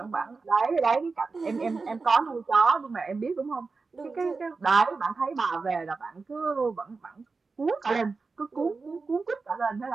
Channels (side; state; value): left; quieter; 4.2 dB